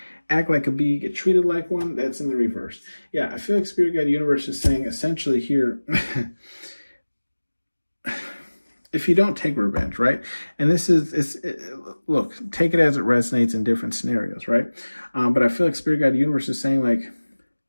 act like a bee, get treated like one. That's in the reverse. Yeah, I feel like Spirit Guide Universe is saying essentially here, if you don't take revenge, right? And this is, look, take it as it resonates in different scenarios, right? But I feel like Spirit Guide Universe is saying like,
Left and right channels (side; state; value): both; inverted; correlation -1.00